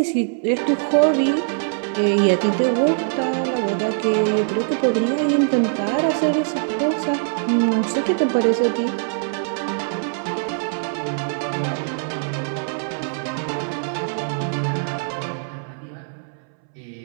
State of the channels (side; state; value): left; silent; 64 dB below the other